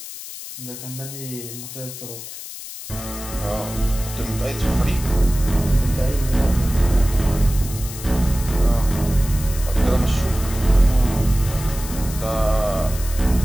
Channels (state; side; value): noise; left; hiss, 11 dB below the sound